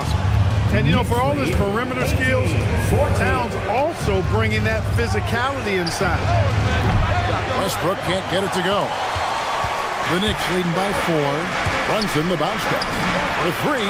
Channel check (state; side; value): identical; both; correlation 1.00